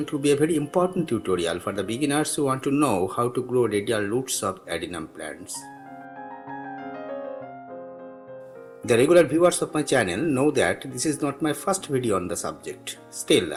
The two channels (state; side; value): identical; both; correlation 1.00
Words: to be a very important tutorial for the beginners who want to know how to grow radial roots of adenium plants. The regular viewers of my channel know that this is not my first video on the subject. Still,